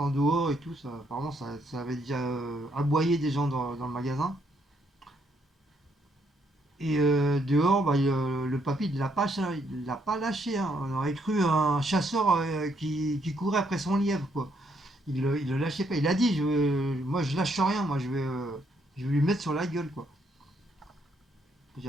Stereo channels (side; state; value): both; normal; correlation 0.72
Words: dehors et tout ça. Apparemment ça avait déjà aboyé des gens dans le magasin. Et dehors, le papy il l'a pas lâché, hein. On aurait cru un chasseur qui courait après son lièvre, quoi. Il le lâchait pas. Il a dit, moi je lâche rien, moi je vais lui mettre sur la gueule, quoi.